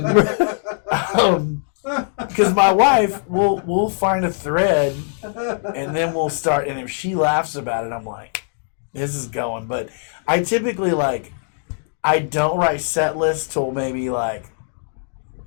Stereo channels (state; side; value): silent; right; digital silence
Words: because my wife we'll find a thread, and then we'll start, and if she laughs about it, I'm like, this is going. But I typically I don't write set lists till maybe 5